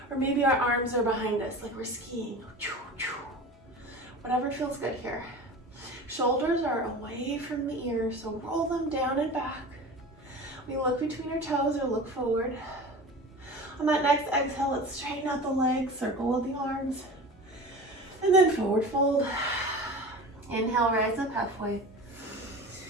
Or maybe our arms are behind us, like we're skiing. Whatever feels good here. Shoulders are away from the ears, so roll them down and back. We look between our toes or look forward. On that next exhale, let's straighten out the legs, circle with the arms, and then forward fold. Inhale, rise up halfway.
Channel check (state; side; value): normal; both; correlation 0.35